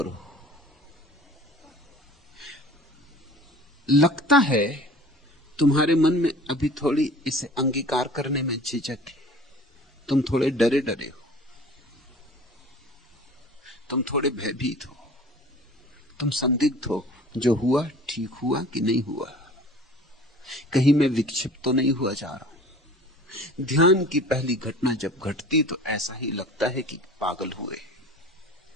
लगता है तुम्हारे मन में अभी थोड़ी इसे अंगीकार करने में झिझक है। तुम थोड़े डरे डरे हो, तुम थोड़े भयभीत हो, तुम संदिग्ध हो, जो हुआ ठीक हुआ कि नहीं हुआ। कहीं मैं विक्षिप्त तो नहीं हुआ जा रहा हूं। ध्यान की पहली घटना जब घटती तो ऐसा ही लगता है कि पागल हुए।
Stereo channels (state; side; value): normal; both; correlation 0.45